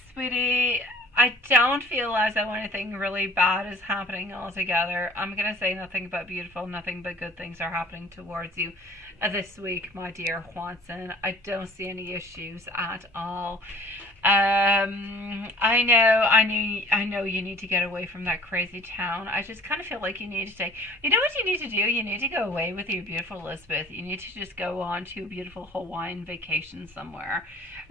sweetie, I don't feel as though anything really bad is happening altogether. I'm going to say nothing but beautiful, nothing but good things are happening towards you this week, my dear Juanson. I don't see any issues at all. I know you need to get away from that crazy town. I just kind of feel like you need to take, you know what you need to do? You need to go away with your beautiful Elizabeth. You need to just go on to a beautiful Hawaiian vacation somewhere.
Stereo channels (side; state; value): both; normal; correlation 0.50